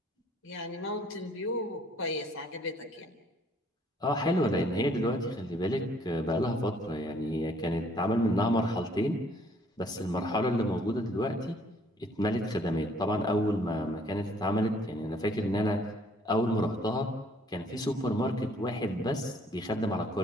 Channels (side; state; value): both; normal; correlation 0.62